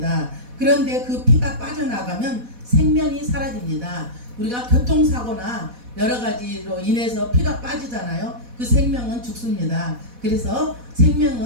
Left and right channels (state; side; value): late; left; 4.1 ms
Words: 그런데 그 피가 빠져나가면 생명이 사라집니다. 우리가 교통사고나 여러 가지로 인해서 피가 빠지잖아요. 그 생명은 죽습니다. 그래서